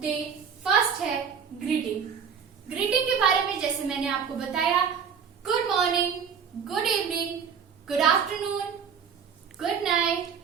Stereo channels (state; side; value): quieter; left; 6.8 dB